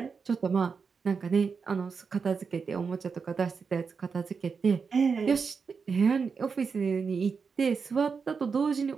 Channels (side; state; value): left; quieter; 5.5 dB